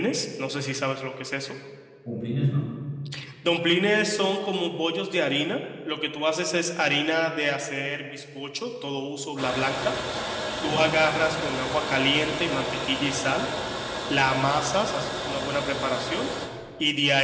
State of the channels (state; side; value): identical; both; correlation 1.00